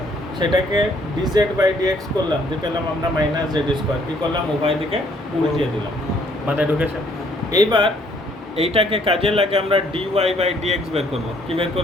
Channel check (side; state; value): both; normal; correlation 0.64